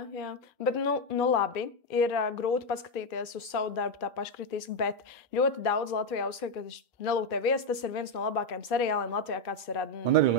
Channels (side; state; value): both; normal; correlation 0.05